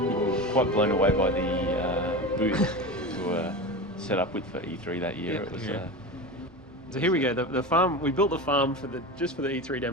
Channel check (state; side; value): normal; both; correlation 0.26